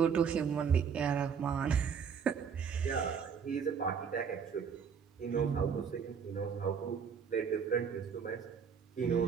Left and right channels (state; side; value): quieter; left; 6.7 dB